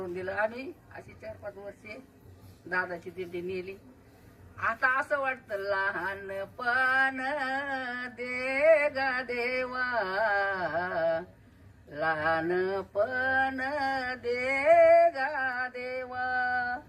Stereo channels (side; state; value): both; identical; correlation 1.00